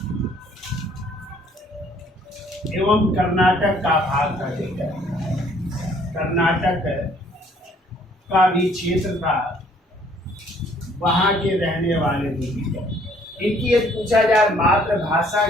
एवं कर्नाटक का भाग था, ठीक है। कर्नाटक का भी क्षेत्र था, वहां के रहने वाले थे, ठीक है। इनकी यदि पूछा जाए मातृभाषा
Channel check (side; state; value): both; normal; correlation 0.61